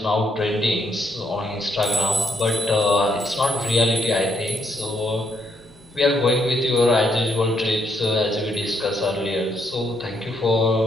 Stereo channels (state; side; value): normal; both; correlation 0.74